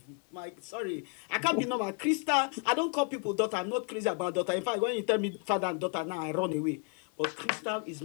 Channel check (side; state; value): right; quieter; 37.5 dB